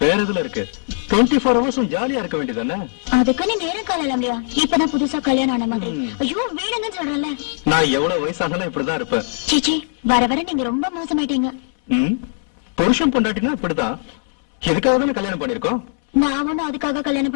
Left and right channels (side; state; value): right; silent; 66 dB below the other